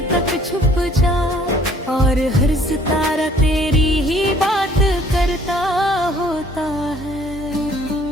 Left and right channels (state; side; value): normal; both; correlation 0.58